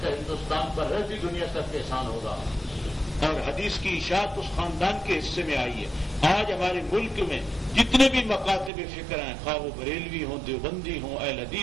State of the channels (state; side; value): drops out; left; at 8.7 s